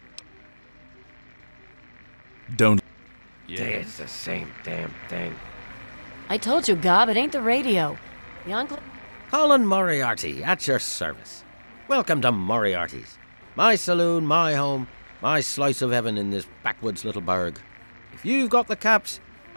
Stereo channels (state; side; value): inverted; both; correlation -1.00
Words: Don't... It's the same damn thing. I told you, Gob, it ain't the radio. The Enclave... Colin Moriarty, at your service. Welcome to Moriarty's. My saloon, my home, my slice of heaven in this backwoods little burg. If you've got the caps,